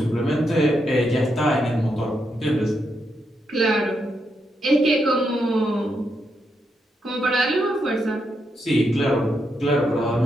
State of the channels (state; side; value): normal; both; correlation 0.81